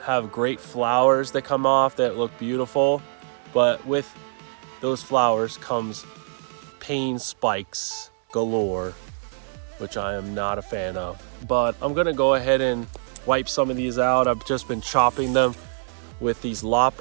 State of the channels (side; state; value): left; silent; digital silence